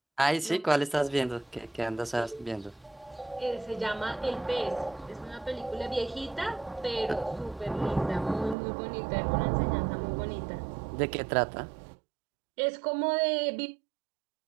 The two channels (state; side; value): drops out; left; at 8.6 s